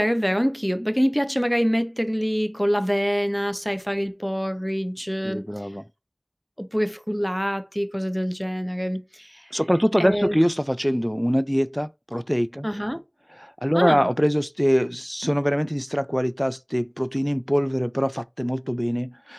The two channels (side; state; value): both; identical; correlation 1.00